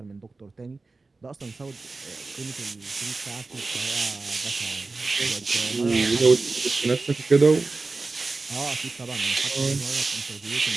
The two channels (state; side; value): quieter; left; 3.6 dB